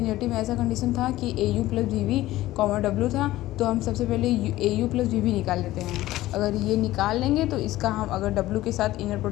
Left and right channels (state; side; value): quieter; right; 16.2 dB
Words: में ऐसा कंडीशन था कि a u plus we we comma डब्ल्यू था, तो हम सबसे पहले a u plus we v निकाल लेते हैं। अगर ये निकाल लेंगे तो इसका हम अगर डब्ल्यू के साथ इनर